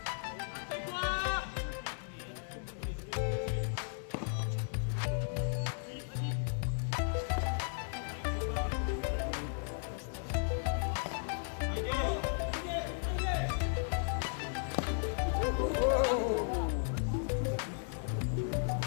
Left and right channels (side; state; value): right; silent; digital silence